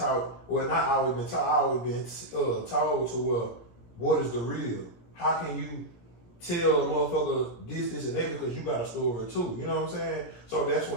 Well, not always been taught. I always been told to what is the real? How can you tell a motherfucker this, and that because you got a story too. You know what I'm saying? So that's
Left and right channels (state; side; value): late; right; 17 ms